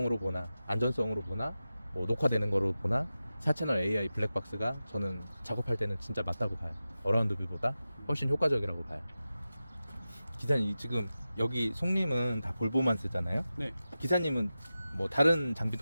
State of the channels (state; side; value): inverted; both; correlation -0.94